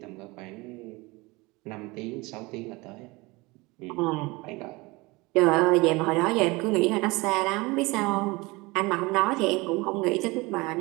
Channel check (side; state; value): left; quieter; 23.8 dB